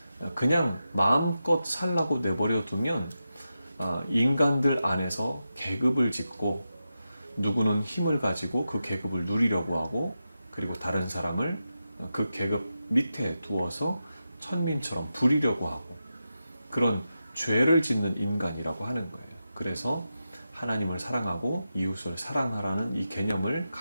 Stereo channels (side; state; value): both; inverted; correlation -0.90